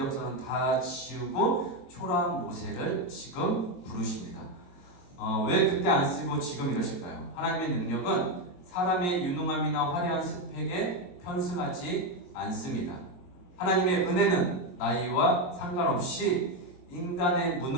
다 지우고 초라한 모세를 지금 부르십니다. 왜 그때 안 쓰고 지금 이러실까요? 하나님의 능력은 사람의 유능함이나 화려한 스펙에 편승하지 않습니다. 하나님의 은혜는 나이와 상관없이 인간의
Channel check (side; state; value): right; late; 23 ms